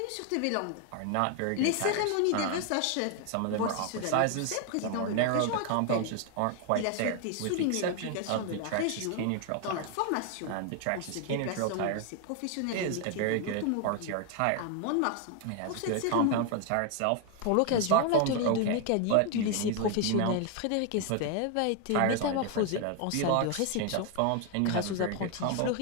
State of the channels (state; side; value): different; both; correlation 0.00